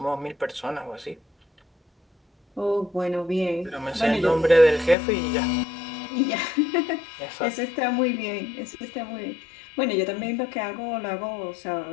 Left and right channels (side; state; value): right; drops out; at 5.0 s